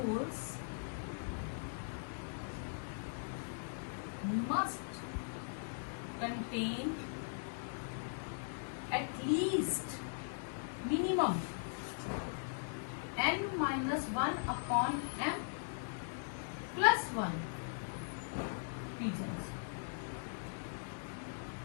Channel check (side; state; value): right; silent; digital silence